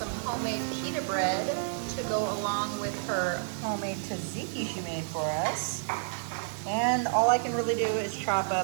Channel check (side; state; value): left; silent; 58 dB below the other